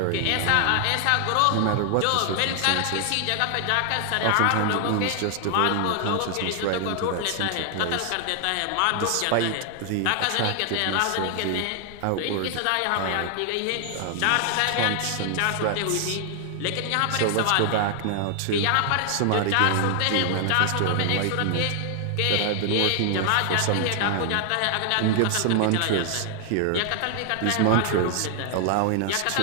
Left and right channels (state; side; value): different; both; correlation 0.00